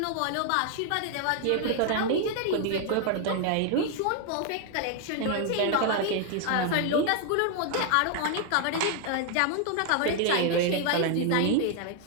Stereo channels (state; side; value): different; both; correlation 0.00